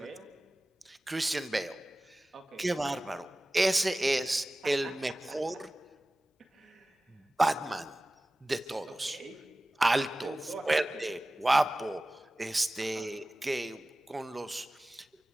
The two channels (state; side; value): normal; both; correlation 0.97